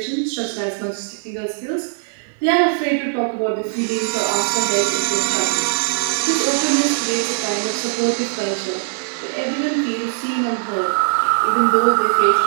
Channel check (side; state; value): left; silent; 63 dB below the other